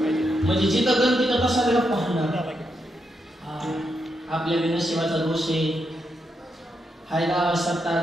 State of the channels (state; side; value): normal; both; correlation 0.82